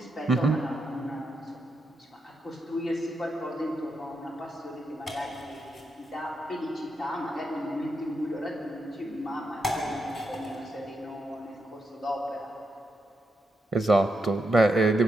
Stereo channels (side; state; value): both; normal; correlation 0.83